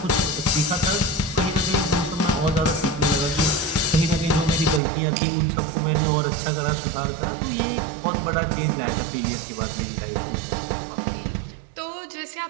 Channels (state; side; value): drops out; left; at 4.8 s